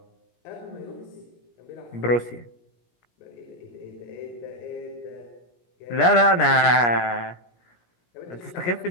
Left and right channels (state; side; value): late; right; 17 ms